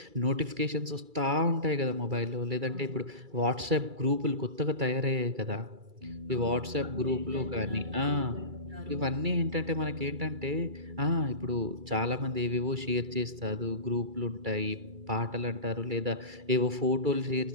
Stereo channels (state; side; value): late; left; 2.3 ms